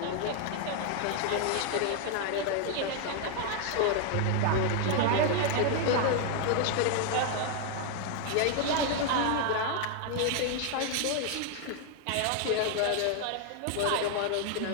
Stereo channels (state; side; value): different; both; correlation 0.00